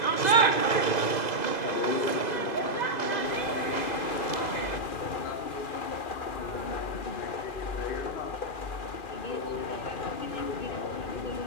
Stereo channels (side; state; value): right; late; 2.0 ms